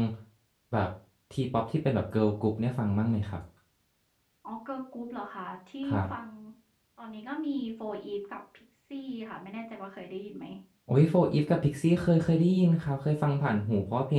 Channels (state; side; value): identical; both; correlation 1.00